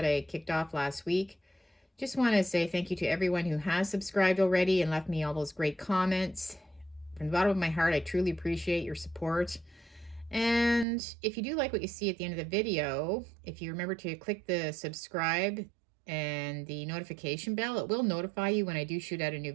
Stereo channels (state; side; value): drops out; left; at 10.9 s